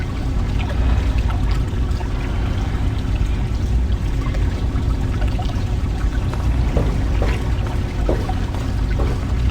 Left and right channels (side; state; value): both; identical; correlation 1.00